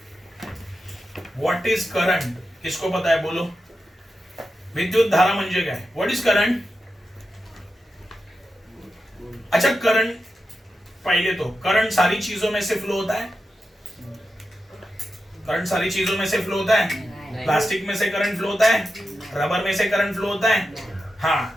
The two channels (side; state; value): both; normal; correlation 0.90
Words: What is current? किसको पता है बोलो? विद्युत धारा म्हणजे काय? What is current? अच्छा, करंट पहले तो करंट सारी चीजों में से फ्लो होता है। करंट सारी चीजों में से फ्लो होता है। प्लास्टिक में से करंट फ्लो होता है, रबर में से करंट फ्लो होता है।